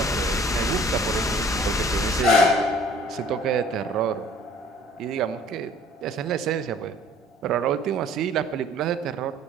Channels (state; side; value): normal; both; correlation 0.53